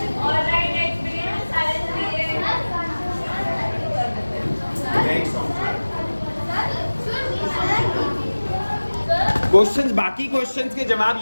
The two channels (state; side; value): inverted; both; correlation -1.00